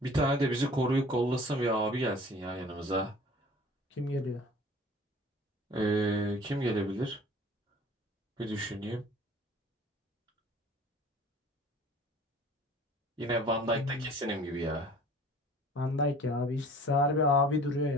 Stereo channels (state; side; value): normal; both; correlation 0.47